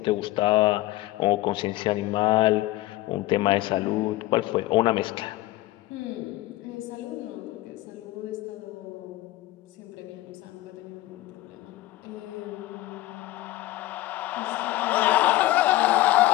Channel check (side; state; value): right; quieter; 17.0 dB